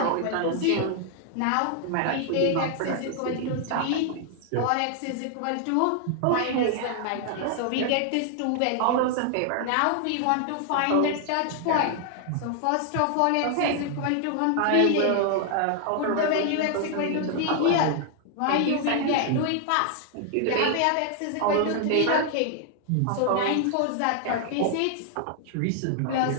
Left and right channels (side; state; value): both; different; correlation 0.00